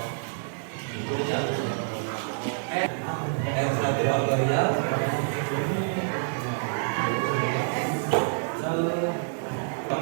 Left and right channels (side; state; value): left; silent; 60 dB below the other